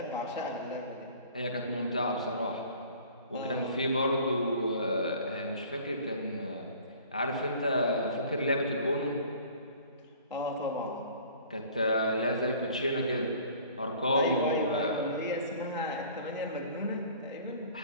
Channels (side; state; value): both; inverted; correlation -0.49